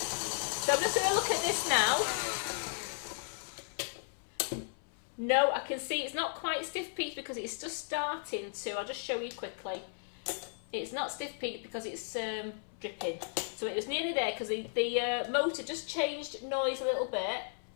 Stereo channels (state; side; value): silent; right; 54 dB below the other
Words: So I'm just going to look at this now. No, I can see it's not quite stiff peaked because it's just starting to. I'll just show you quickly. It's not stiff peaked because it's dripping. So it was nearly there because the motor just changed noise a little bit.